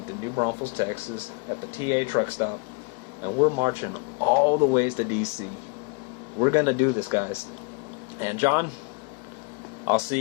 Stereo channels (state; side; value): quieter; right; 33.2 dB